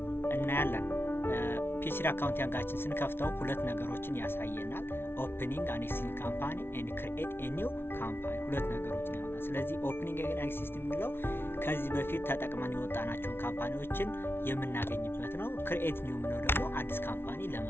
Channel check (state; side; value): late; right; 0.11 ms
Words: እናያለን። P3 accounting ስንከፍተው ሁለት ነገሮችን ያሳየናል። opening an existing company and create a new company ሁለት ነገሮችን ያሳያል። ስለዚህ opening an existing የሚለው ከዚህ በፊት ተጠቅመን የወጣናቸውን ካምፓኒዎችን የምናገኝበት ነው። create new የሚለው ደግሞ አዲስ ካምፓኒ